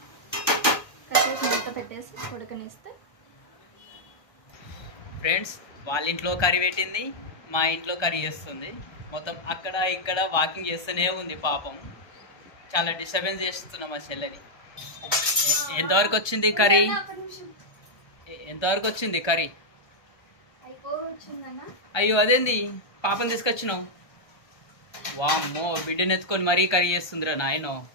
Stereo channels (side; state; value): right; late; 1.3 ms